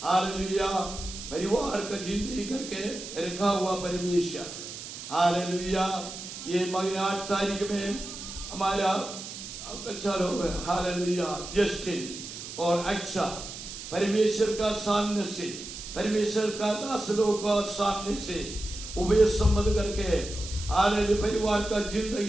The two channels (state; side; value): noise; right; hiss, 10 dB below the sound